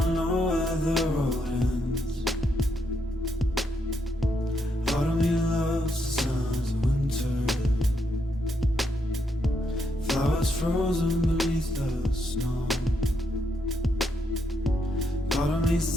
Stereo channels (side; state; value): both; normal; correlation 0.78